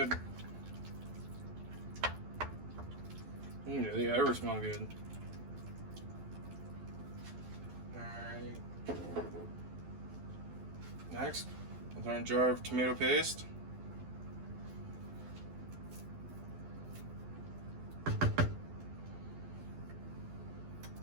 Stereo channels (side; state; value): left; late; 12 ms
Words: They ever smell good. Alright. Next, with our jar of tomato paste.